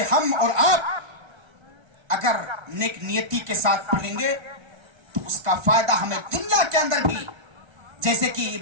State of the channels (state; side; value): late; left; 1.3 ms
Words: ہم اور آپ اگر نیک نیتی کے ساتھ پڑھیں گے تو اس کا فائدہ ہمیں دنیا کے اندر بھی، جیسے کہ